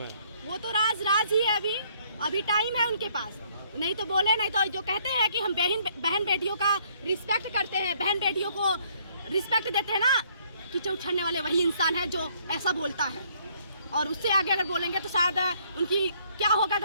वो तो राज ही है। अभी टाइम है उनके पास, नहीं तो बोले, नहीं तो जो कहते हैं कि हम बहन बेटियों का रिस्पेक्ट करते हैं, बहन बेटियों को रिस्पेक्ट देते हैं ना, कीचड़ उछालने वाले वही इंसान है जो ऐसा बोलता है। और उससे आगे अगर बोलेंगे तो शायद उनकी क्या होगा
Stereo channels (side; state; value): both; inverted; correlation -0.65